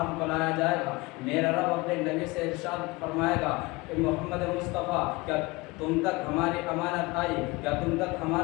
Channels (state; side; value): quieter; right; 23.5 dB